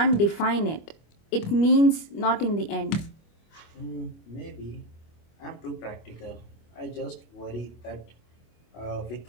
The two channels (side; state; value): right; late; 25 ms